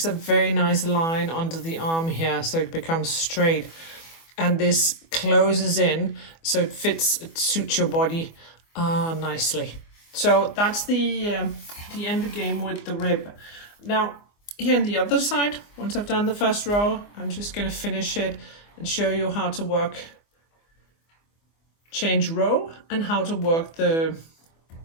a very nice line under the arm here, so it becomes straight. And this closes in, so it fits, it suits your body nicely. So that's the end game with the rib. Now, here on the other side, once I've done the first row, I'm just going to finish it and show you how to work change row and how to work the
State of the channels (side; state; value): right; late; 24 ms